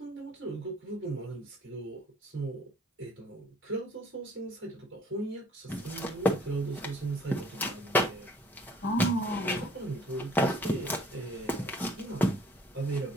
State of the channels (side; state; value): both; normal; correlation 0.57